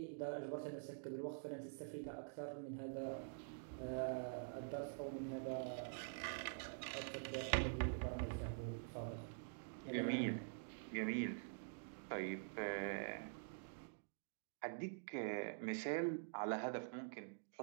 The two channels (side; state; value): left; silent; digital silence